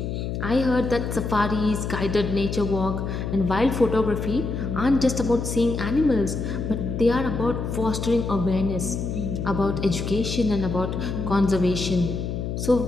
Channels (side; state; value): left; noise; hum, 3 dB below the sound